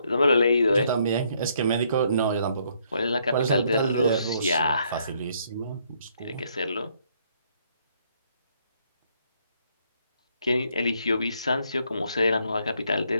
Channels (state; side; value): inverted; both; correlation -0.70